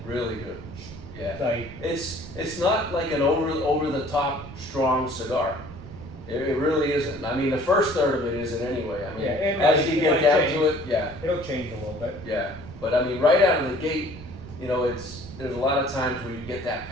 Really good. Yeah. Like, It's not like an over the top strong cigar. It really isn't. I mean, the first third of it isn't anyway. I mean, Yeah, it as might- you it get might down change. to it, yeah, it'll change a little bit. yeah. But I mean, right out of the gate, there's a lot of times where you get that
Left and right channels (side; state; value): right; noise; rumble, 14 dB below the sound